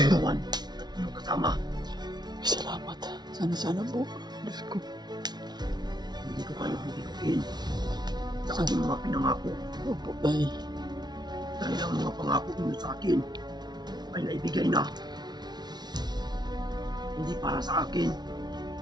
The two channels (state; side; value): late; left; 0.20 ms